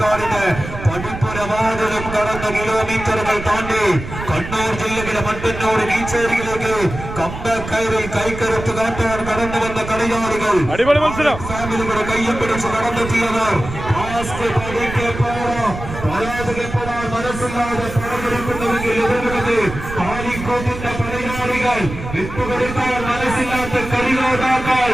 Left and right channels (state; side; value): noise; right; rumble, 9 dB below the sound